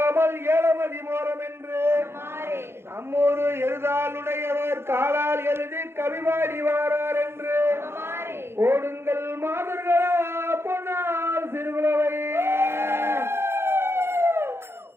ஏழமதி மோரம் என்று நம்மோடு எழுதாளுடையவர் காலால் எழுதி கவிவாடி வாரார் என்று ஓடுங்கள் மாதர்களா பொன்னால் சிறுகுலவை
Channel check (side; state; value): left; late; 0.12 ms